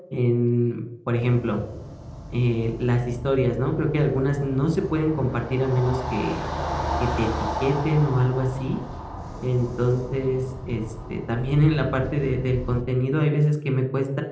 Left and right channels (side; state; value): both; identical; correlation 1.00